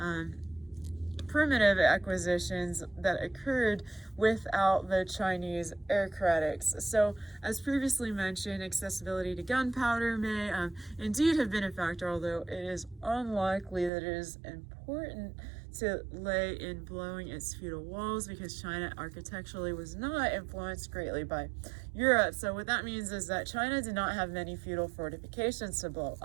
primitive acquisitions that occurred without the Chinese aristocrats. So, as previously mentioned, accessibility to gunpowder may indeed have been a factor, although it is unlikely that it is important to lay in blowing its feudal walls, because China architecturally was not influenced greatly by Europe. So what that means is that China did not have many feudal fortifications to blow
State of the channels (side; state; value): left; drops out; at 13.9 s